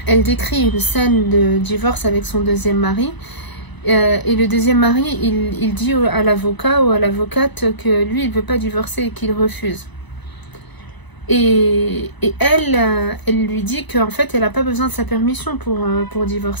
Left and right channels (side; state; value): right; late; 1.0 ms